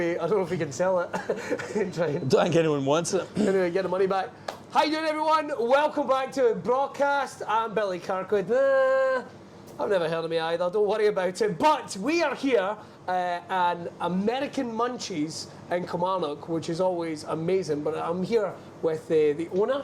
know if we can sell it. Don't think anyone wants it. Anyway, get the money back. How you doing, everyone? Welcome back to Braw Cast. I'm Billy Kirkwood. Nah, I've never heard of me either. Don't worry about it. But we are here at American Munchies in Kilmarnock, which is always amazing. But I'm here with the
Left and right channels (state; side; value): identical; both; correlation 1.00